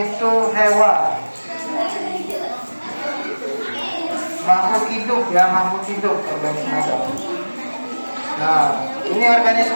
itu hewan, makhluk hidup ya, makhluk hidup organisme itu. Nah, ini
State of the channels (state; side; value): inverted; both; correlation -1.00